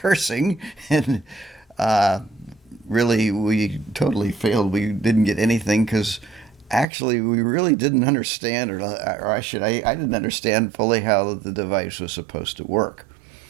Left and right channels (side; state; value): left; drops out; at 6.9 s